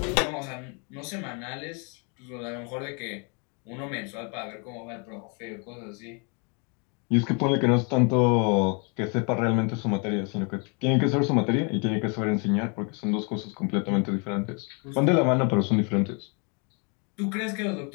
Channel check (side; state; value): right; quieter; 34.9 dB